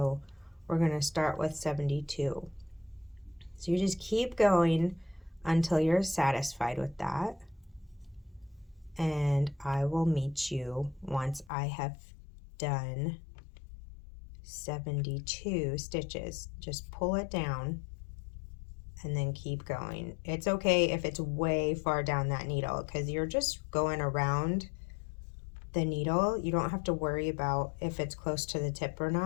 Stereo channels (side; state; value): right; drops out; at 11.5 s